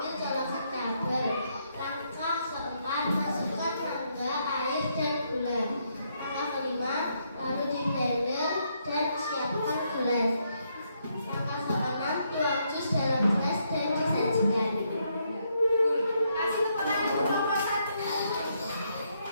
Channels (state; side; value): inverted; both; correlation -0.76